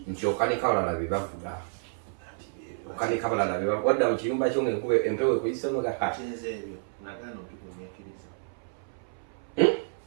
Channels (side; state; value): left; silent; 58 dB below the other